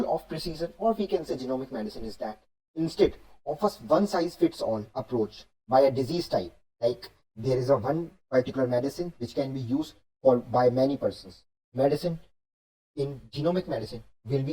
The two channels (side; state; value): both; identical; correlation 1.00